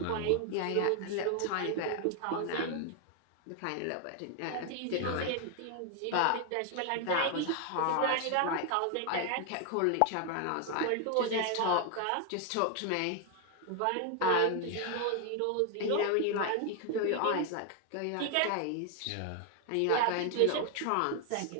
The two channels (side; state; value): both; different; correlation 0.01